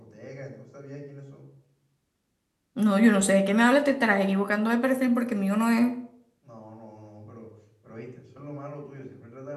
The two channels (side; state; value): both; identical; correlation 1.00